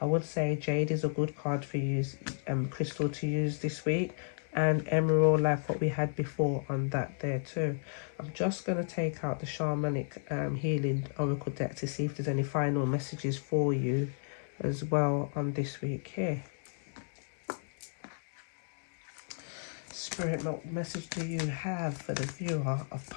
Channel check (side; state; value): right; silent; digital silence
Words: would say jade is a good card for you, crystal to use this week. And emerald, like what we had before on that there too. I'm just going to take out the shamanic healing oracle deck to see if there's any final messages for you as well on this week here. Spirit, what message do you have for the viewer of